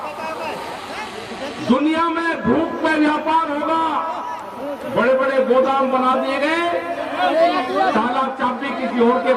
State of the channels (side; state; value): both; identical; correlation 1.00